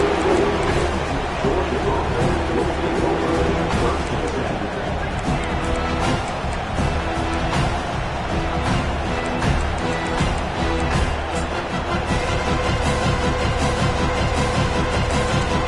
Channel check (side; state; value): both; identical; correlation 1.00